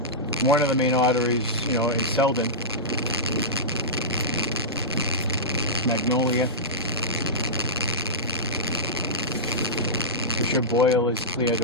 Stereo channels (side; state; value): both; normal; correlation -0.14